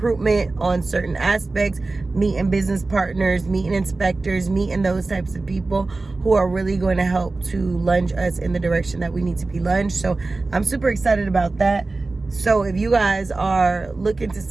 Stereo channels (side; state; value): left; quieter; 3.4 dB